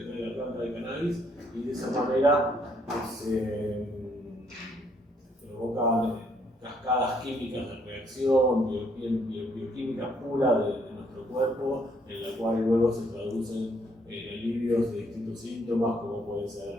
trae la planta de cannabis, y de esa manera se provocan cascadas químicas de reacción, bioquímica pura de nuestro cuerpo, en la cual luego se traducen en alivios de distintos síntomas, como puede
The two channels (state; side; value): normal; both; correlation 0.69